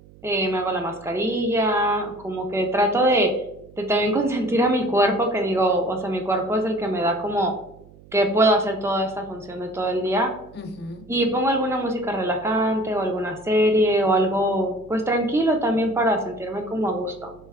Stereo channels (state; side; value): noise; right; hum, 24 dB below the sound